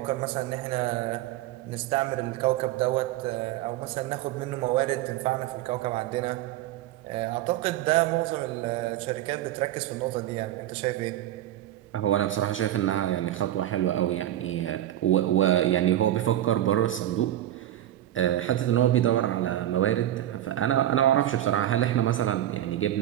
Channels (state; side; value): quieter; left; 12.9 dB